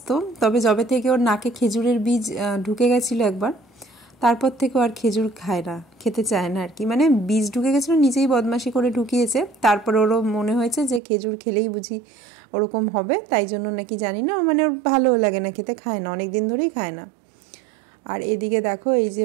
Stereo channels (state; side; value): drops out; left; at 11.0 s